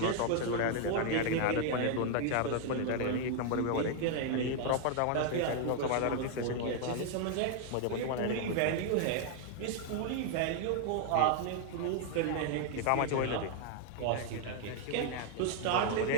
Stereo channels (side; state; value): both; different; correlation 0.00